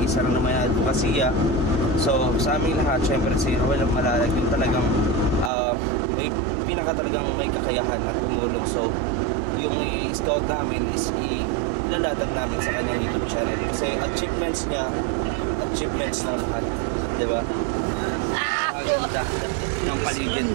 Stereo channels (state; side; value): drops out; left; at 5.5 s